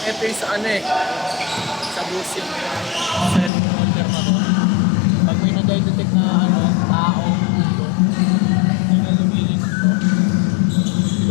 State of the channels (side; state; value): right; drops out; at 3.5 s